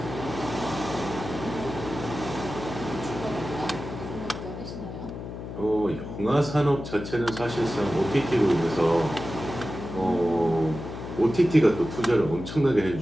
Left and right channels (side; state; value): left; noise; hum, 9 dB below the sound